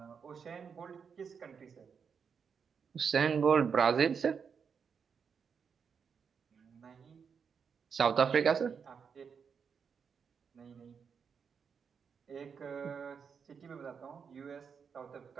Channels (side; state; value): left; quieter; 6.4 dB